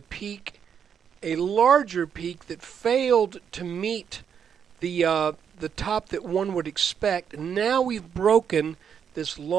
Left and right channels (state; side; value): quieter; left; 7.7 dB